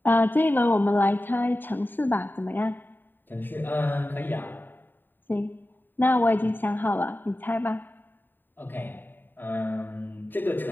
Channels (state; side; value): late; right; 0.092 ms